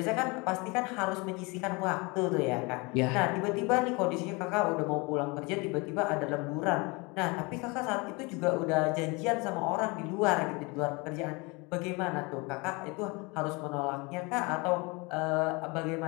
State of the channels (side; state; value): right; quieter; 27.4 dB